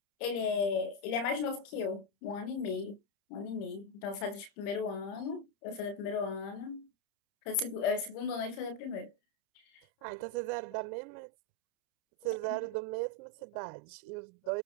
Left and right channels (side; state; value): right; late; 30 ms